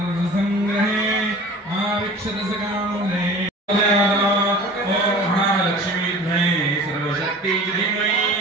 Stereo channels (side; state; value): both; normal; correlation 0.41